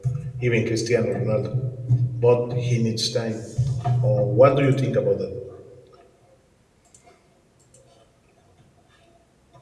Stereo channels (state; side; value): identical; both; correlation 1.00